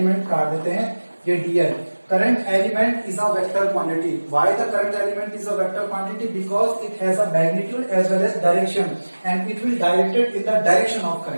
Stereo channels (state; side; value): inverted; both; correlation -1.00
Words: काट देते हैं, ये D L. Current element is a vector quantity. Why the current element is a vector quantity? Because it has a magnitude as well as direction and it will directed in the direction of